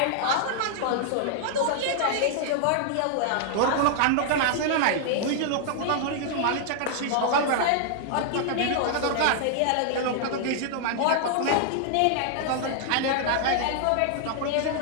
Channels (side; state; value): both; different; correlation -0.01